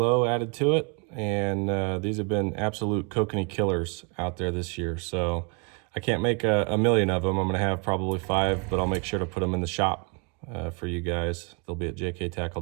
added to it, and these have been absolute kokanee killers out there this year. So I can't make a million of them. I'm gonna have probably 5, but I'll make sure to put them in the shop for you guys. They'll be at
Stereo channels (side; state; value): left; quieter; 34.1 dB